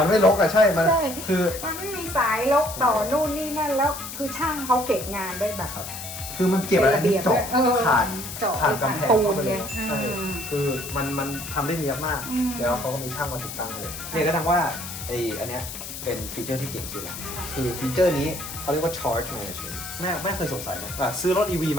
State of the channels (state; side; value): noise; left; hiss, 9 dB below the sound